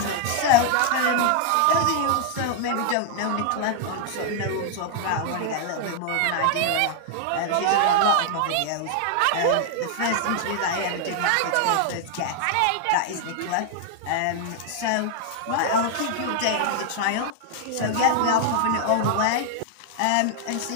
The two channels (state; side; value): different; both; correlation 0.00